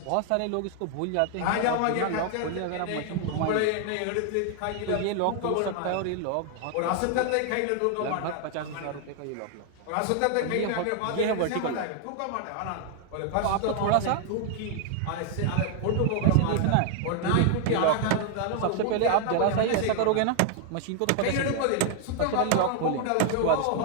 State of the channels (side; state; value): both; different; correlation 0.00